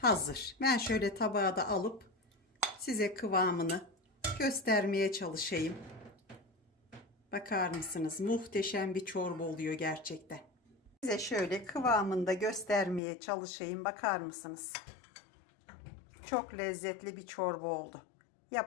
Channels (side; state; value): right; drops out; at 13.0 s